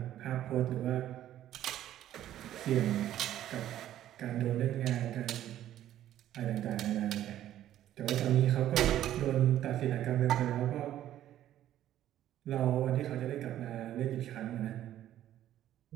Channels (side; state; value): left; quieter; 12.3 dB